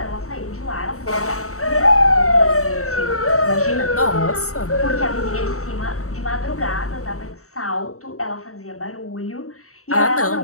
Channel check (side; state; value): right; late; 0.64 ms